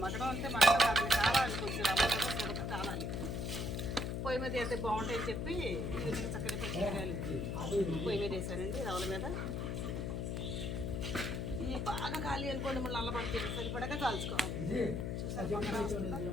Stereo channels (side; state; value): left; noise; hum, 2 dB below the sound